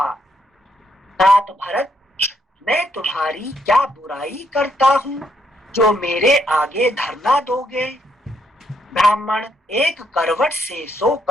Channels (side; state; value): both; normal; correlation 0.74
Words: तात भरत, मैं तुम्हारी क्या बुराई करता हूँ जो मेरे आगे धरना दोगे? ब्राह्मण एक करवट से